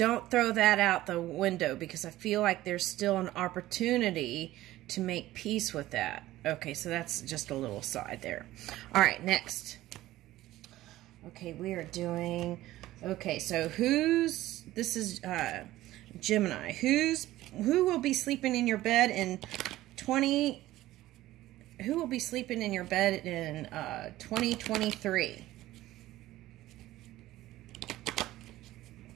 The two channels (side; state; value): left; quieter; 15.8 dB